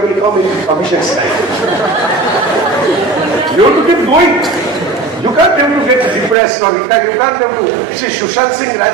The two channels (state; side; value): drops out; left; at 6.4 s